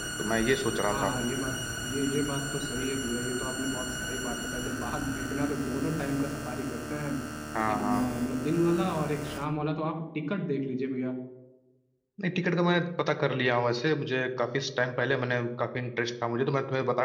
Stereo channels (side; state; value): both; identical; correlation 1.00